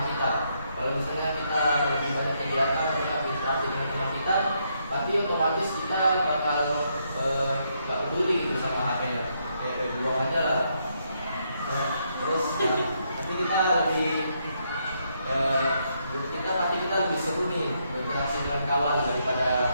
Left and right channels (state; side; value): inverted; both; correlation -0.76